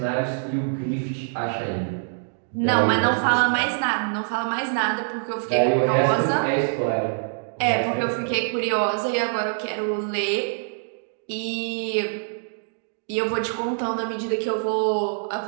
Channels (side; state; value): left; silent; digital silence